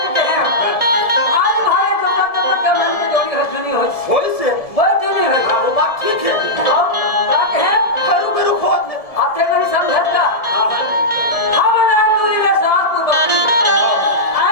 कहे आज भाई जो का मन की जोड़ी है सुनी हो होई से वो सुनी है हां वो बात ठीक है अब का कहे हरू करू खोद ले आते नहीं समझता हम नाम दूरी में साथ को बकरी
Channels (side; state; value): right; late; 1.7 ms